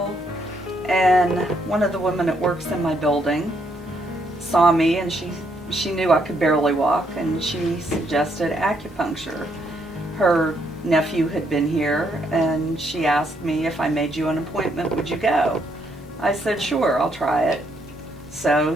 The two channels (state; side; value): normal; both; correlation 0.73